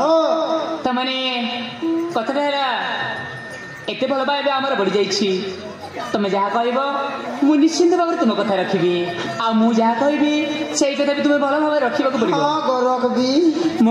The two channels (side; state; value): both; identical; correlation 1.00